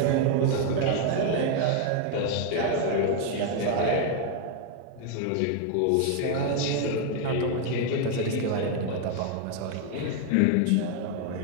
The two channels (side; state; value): both; different; correlation 0.01